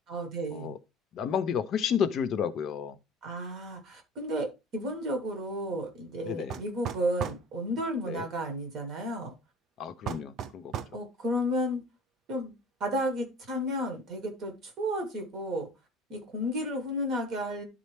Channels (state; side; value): normal; both; correlation 0.42